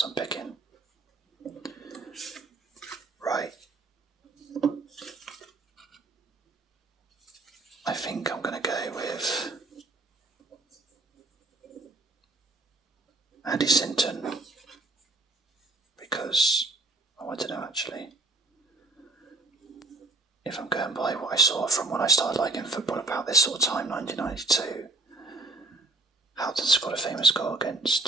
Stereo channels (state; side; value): quieter; left; 3.0 dB